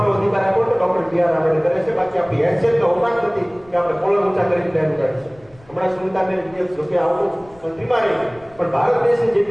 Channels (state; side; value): noise; left; rumble, 27 dB below the sound